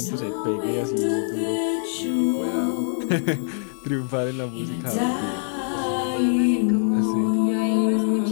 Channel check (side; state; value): right; silent; digital silence